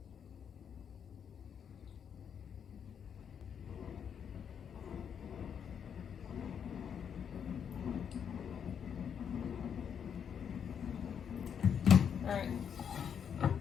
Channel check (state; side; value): quieter; right; 7.8 dB